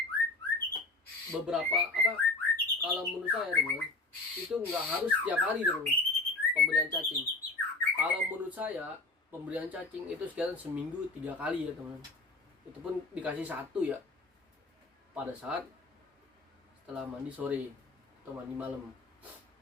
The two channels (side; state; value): right; quieter; 3.1 dB